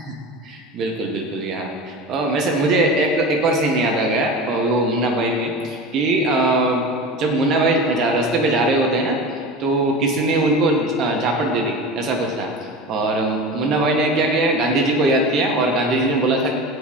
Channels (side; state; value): both; normal; correlation 0.31